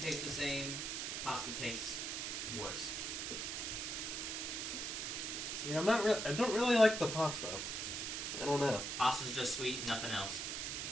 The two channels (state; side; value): noise; right; hiss, 3 dB below the sound